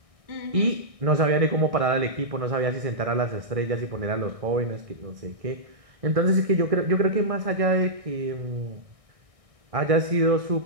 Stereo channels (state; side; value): late; left; 1.6 ms